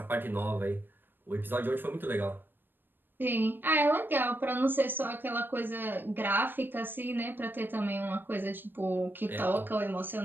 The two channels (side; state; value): left; late; 0.095 ms